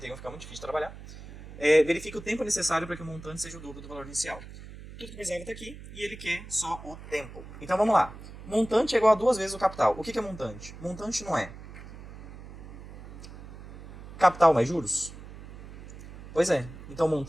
fica muito difícil de trabalhar. Verifique o tempo necessário para que o montante seja o dobro do valor inicial. Tudo que precisava está aqui e ele quer só o tempo. Então vamos lá. Montante é igual a 2 vezes o capital. O que é montante? Montante não é capital mais juros? Pois é. Então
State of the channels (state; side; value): noise; right; hum, 15 dB below the sound